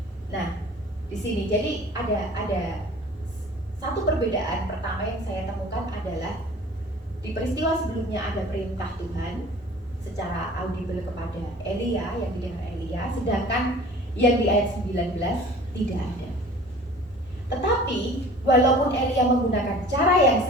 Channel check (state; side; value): normal; both; correlation 0.45